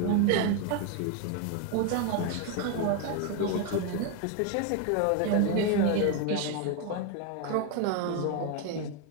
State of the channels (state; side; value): different; both; correlation 0.01